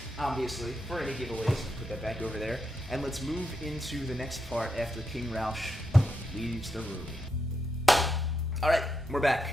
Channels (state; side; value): normal; both; correlation 0.83